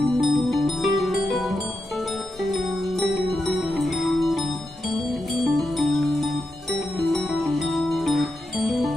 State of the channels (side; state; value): both; normal; correlation 0.86